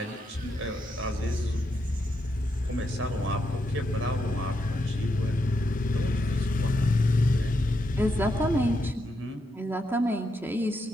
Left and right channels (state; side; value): normal; both; correlation 0.82